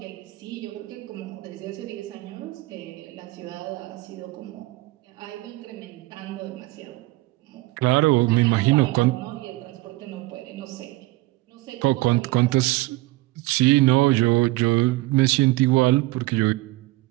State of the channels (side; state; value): left; quieter; 20.3 dB